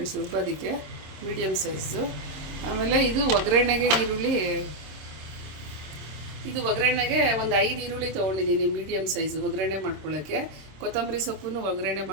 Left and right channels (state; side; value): late; left; 26 ms